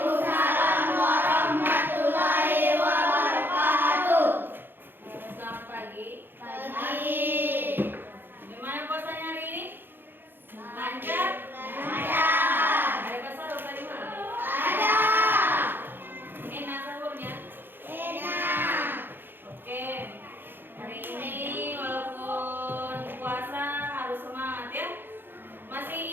warahmatullahi wabarakatuh. Selamat pagi. Pagi. Gimana puasanya hari ini? Lancar? Lancar. Ada sahur tadi malam? Ada. Enak sahurnya? Enak. Oke. Hari ini walaupun puasa harus semangat ya. Masih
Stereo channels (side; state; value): left; late; 0.099 ms